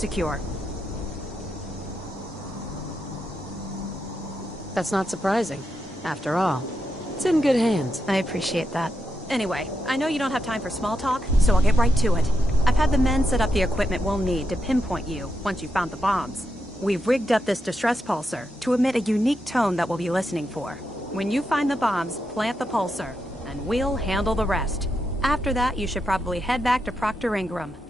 That's not surprising. After all, it's in good hands. I appreciate that. Anyway, I know you don't have time for small talk, so I'll get right to it. I've had the men set up the equipment we'll need to pinpoint you once you've found the bombs. We've rigged up this distress pulsar to emit a unique tone that we'll be listening for. When you find the bombs, plant the pulsar, and we'll handle the rest. After that, you should probably head back to Proctor Ingram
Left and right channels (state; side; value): normal; both; correlation 0.84